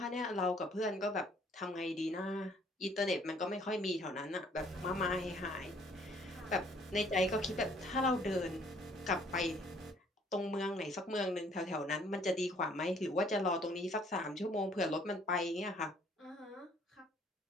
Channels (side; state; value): both; normal; correlation 0.60